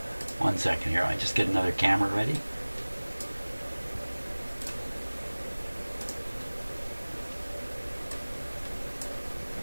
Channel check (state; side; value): inverted; both; correlation -1.00